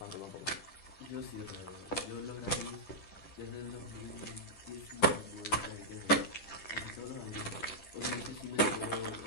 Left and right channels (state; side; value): late; right; 10 ms